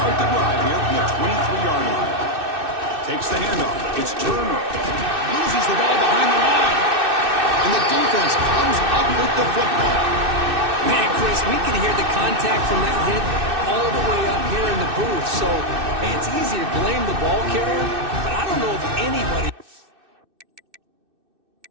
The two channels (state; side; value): late; left; 2.6 ms